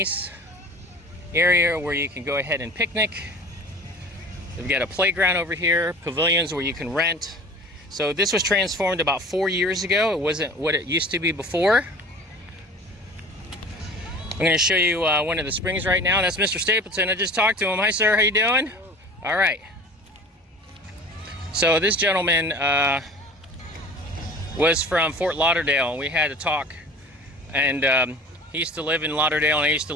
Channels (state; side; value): normal; both; correlation 0.42